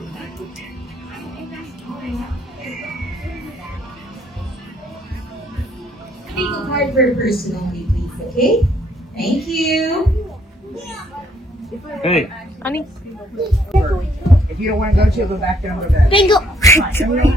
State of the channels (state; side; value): normal; both; correlation 0.67